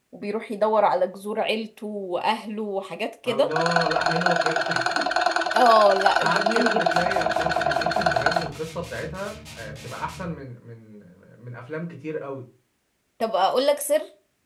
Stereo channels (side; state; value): both; identical; correlation 1.00